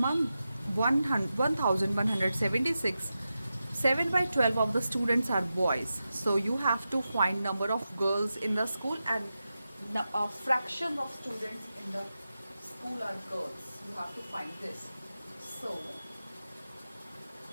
1176, 7 by 12 of the students are boys. So you have to find number of girls in the school and a fraction of students in the school are girls. You have to find this. So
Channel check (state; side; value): inverted; both; correlation -0.91